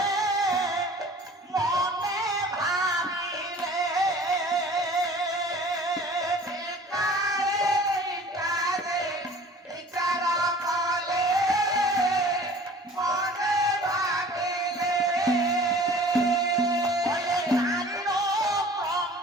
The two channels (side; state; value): both; normal; correlation 0.47